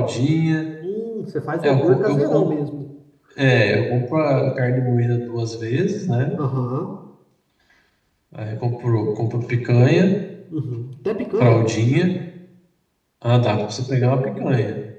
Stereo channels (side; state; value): both; identical; correlation 1.00